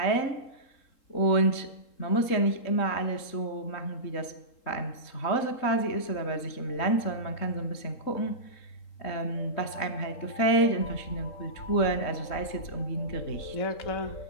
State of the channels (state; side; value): late; right; 3.7 ms